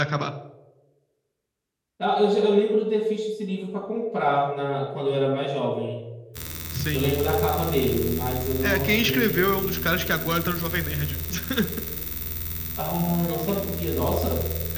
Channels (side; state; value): both; identical; correlation 1.00